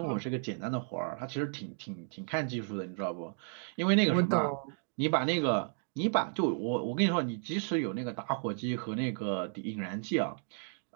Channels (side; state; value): left; silent; 56 dB below the other